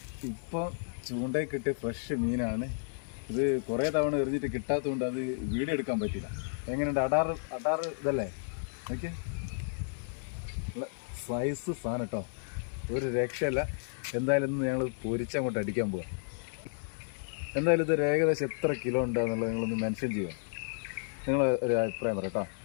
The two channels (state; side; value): silent; right; digital silence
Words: ഇപ്പോൾ ചൂണ്ടയിൽ കിട്ടിയ ഫ്രഷ് മീനാണ് ഇത്. കുറേ തവണ എറിഞ്ഞിട്ട് കിട്ടാത്തതുകൊണ്ട് അത് വീഡിയോ എടുക്കാൻ പറ്റില്ല. എങ്ങനെയുണ്ട്? അടാറ് ഇതല്ലേ? ഓക്കെ, സൈസ് സാധനം കേട്ടോ, ഒരു രക്ഷയല്ല. എന്തായാലും ഇന്ന് ഞങ്ങൾ പൊരിച്ചങ്ങോട്ട് അടിക്കാൻ പോവാം. എന്തായാലും ഇതൊരു ഏകദേശം എത്ര കിലോ ഉണ്ടാകുന്നുള്ളത് നിങ്ങളൊന്ന് മെൻഷൻ ചെയ്യുക. നിങ്ങൾ ഒരു അഭിപ്രായം പറയാം കേട്ടോ.